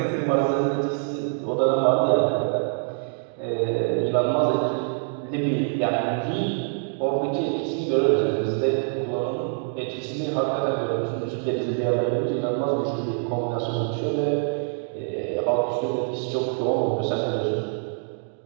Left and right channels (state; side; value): silent; left; 62 dB below the other